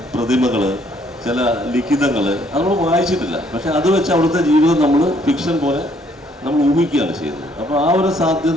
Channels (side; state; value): both; normal; correlation 0.66